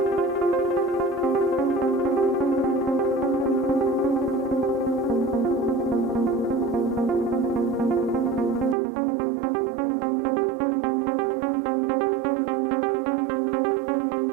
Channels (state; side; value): drops out; left; at 8.8 s